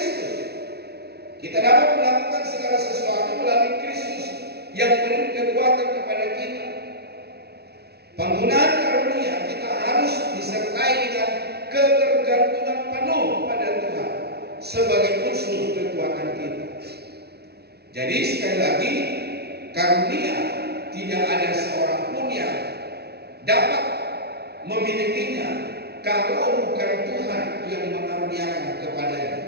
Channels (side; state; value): left; late; 0.47 ms